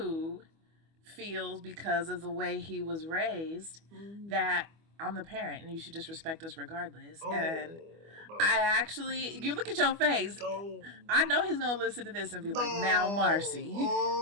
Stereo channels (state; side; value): late; left; 25 ms